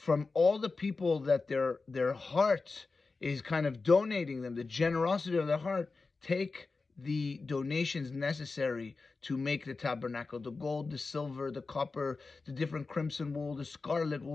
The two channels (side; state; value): right; quieter; 4.0 dB